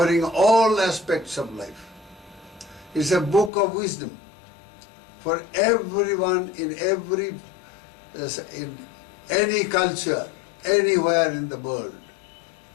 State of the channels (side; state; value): right; drops out; at 3.5 s